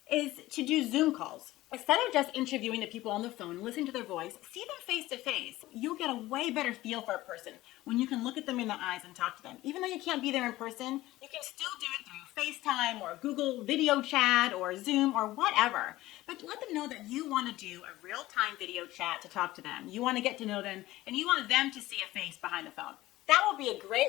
is to do Zoom calls. Instead of just interviewing the people on the phone, listening to their voice, see them face to face. You'll get a way better feel for a person when you can look at them in the eyes and talk to them. Even though you can't be there in person, you can still do it through FaceTime or Google video chat or Zoom or whatever. But let them know that you want to do a real-time video chat to talk to them. You want to get to know them, and you want them to see a face behind the phone. That will be a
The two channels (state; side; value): quieter; right; 17.0 dB